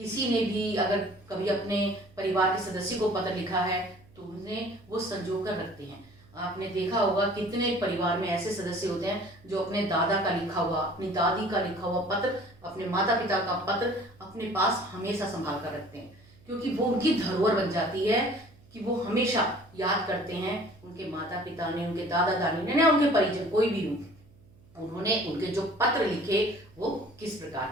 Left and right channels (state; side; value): noise; right; hum, 27 dB below the sound